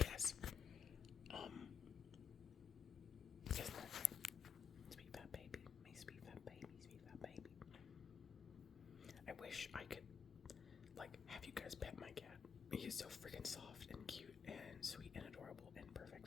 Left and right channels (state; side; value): quieter; right; 7.1 dB